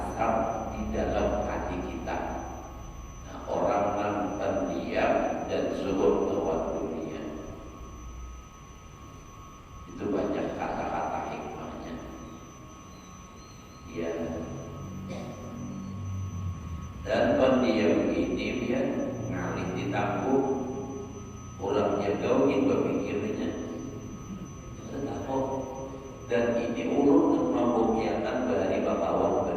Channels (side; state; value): both; identical; correlation 1.00